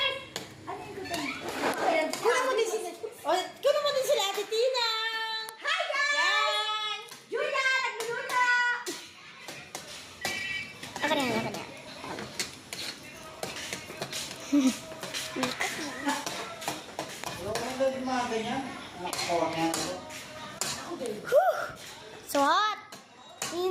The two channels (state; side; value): identical; both; correlation 1.00